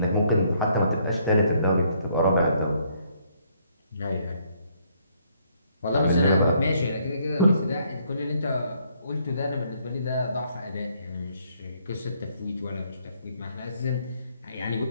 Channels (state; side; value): inverted; both; correlation -0.68